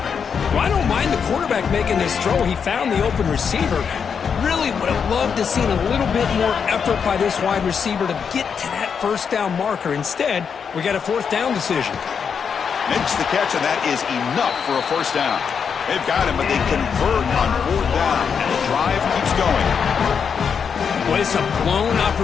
Well, I don't mind the quarterback making this throw. He found the open receiver. Really would have loved to have seen a little bit more effort by this wide receiver to get to that first down marker. Instead, we got a fourth down decision. Makes the catch, and that is enough for a first down. They've got him, but they convert on fourth down, and the drive keeps going. Well, it's a blown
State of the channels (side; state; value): right; quieter; 6.6 dB